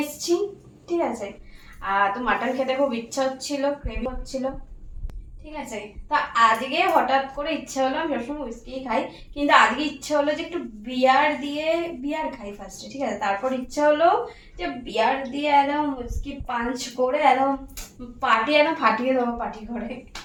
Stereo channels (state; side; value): identical; both; correlation 1.00